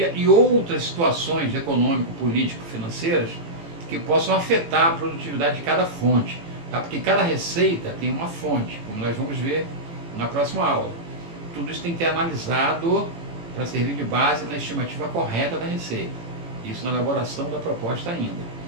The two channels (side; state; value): left; late; 18 ms